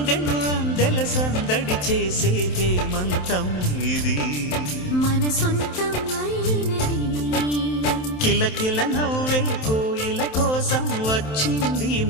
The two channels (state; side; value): late; right; 27 ms